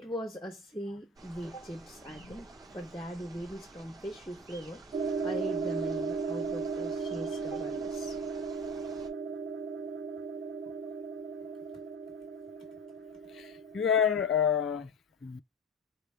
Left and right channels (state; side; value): normal; both; correlation 0.33